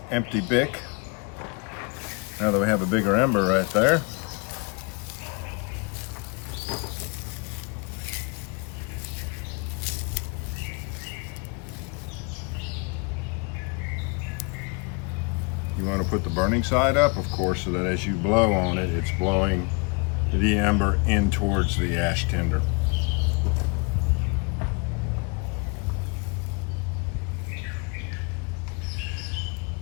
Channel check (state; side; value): quieter; right; 32.7 dB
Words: empty BIC. Now that we have a bigger ember right there. You want to put the burning side up, of course, so that as you blow on it, it's blowing the ember in towards the ash tinder.